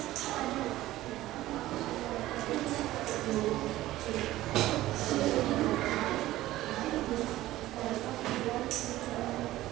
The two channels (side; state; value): left; quieter; 15.8 dB